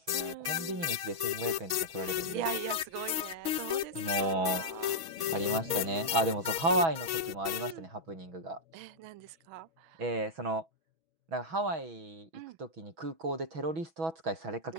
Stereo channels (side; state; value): left; late; 6.2 ms